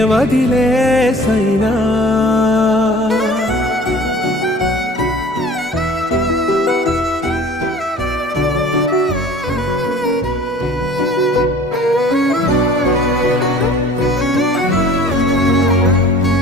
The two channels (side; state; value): both; normal; correlation 0.47